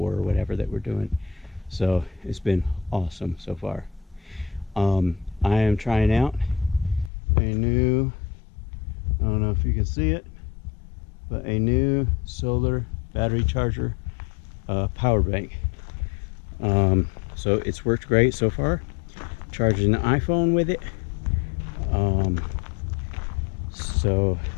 or whatever that we're doing. So it's been awesome so far. I am trying out a new, I don't know if you can see it, but a new solar battery charger power bank. So it's worked great so far. Charging the iPhone with it. So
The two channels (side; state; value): right; drops out; at 7.1 s